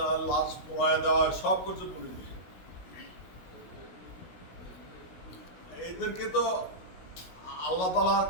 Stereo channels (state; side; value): late; right; 16 ms